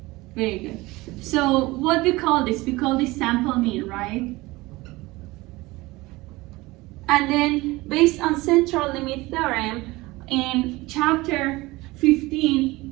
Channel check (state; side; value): quieter; left; 20.9 dB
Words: very good. So what we call this? We call this sample mean, right? And then based on central limit theorem, in chapter 15,